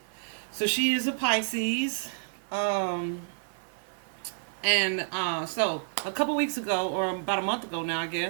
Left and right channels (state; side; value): silent; left; 58 dB below the other